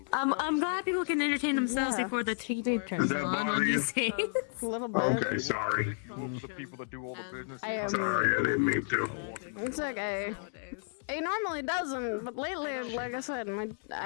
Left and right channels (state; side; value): silent; right; digital silence